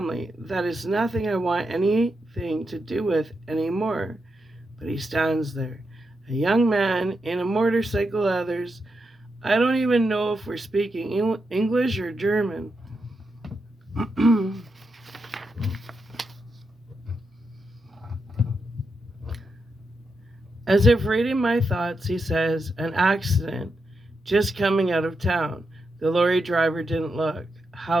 that is nothing I want anything to do with anymore. But he stands there, a young man in a motorcycle leathers. I don't even know if we're speaking English or German. As if reading my thoughts, he says, "An accident, just coming out of town. The lorry driver didn't look."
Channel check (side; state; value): both; normal; correlation 0.85